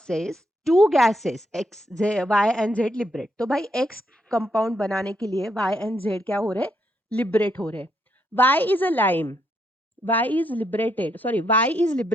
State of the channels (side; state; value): both; normal; correlation 0.77